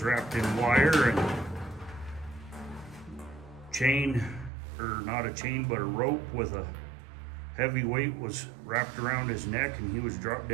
wrapped in wire and chain, or not a chain, but a rope with a heavy weight was wrapped around his neck, and he was dropped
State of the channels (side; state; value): left; drops out; at 4.5 s